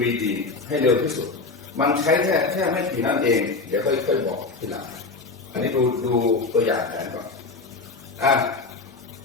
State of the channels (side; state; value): right; quieter; 3.9 dB